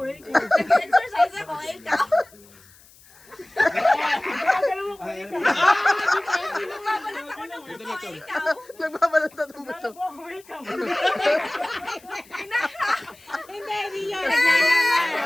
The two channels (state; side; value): noise; left; hiss, 26 dB below the sound